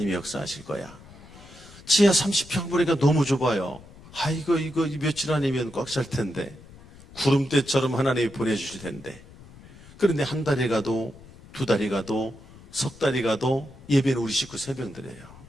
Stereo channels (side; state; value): left; noise; rumble, 20 dB below the sound